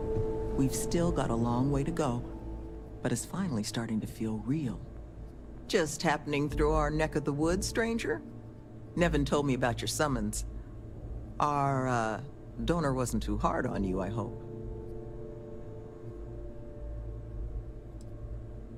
We've still got a long way to go, but it's finally starting to feel real. Just happening through our neck of the woods, stranger? Nevin told me about your summons. Our, donor wasn't too hard on you, I hope.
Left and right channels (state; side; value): identical; both; correlation 1.00